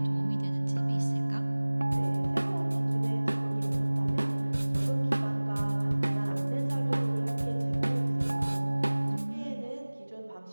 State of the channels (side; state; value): both; inverted; correlation -1.00